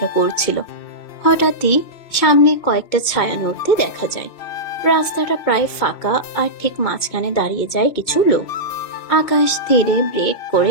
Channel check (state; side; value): late; right; 2.2 ms